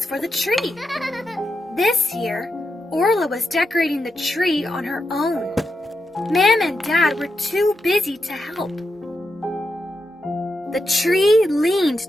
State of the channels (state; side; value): normal; both; correlation 0.86